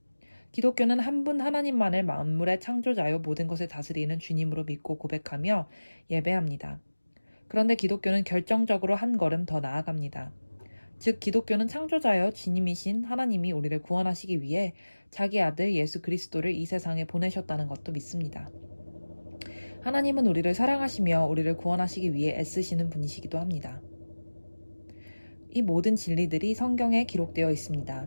기독교는 한 분 하나님만을 만물의 창조자요 모든 것을 다스리는 주님으로 믿고 고백하며 예배합니다. 그런데 기독교는 결정적으로 한 걸음 더 나아갑니다. 즉 기독교는 창조자여 주님이신 하나님이 우리를 구원하시기 위해 자기 아들 예수 그리스도를 이 세상에 보내셨다는 것도 믿습니다. 하나님은 우리를 사랑하시며 우리를 구원하시기 위해 애쓰시는 분이시기도 합니다. 이 모든 진리들이 성경에 기록되어 있습니다.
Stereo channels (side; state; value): both; inverted; correlation -1.00